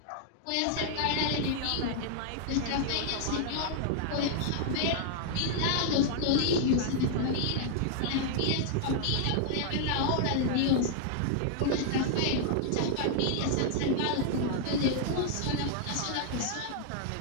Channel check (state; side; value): different; both; correlation 0.00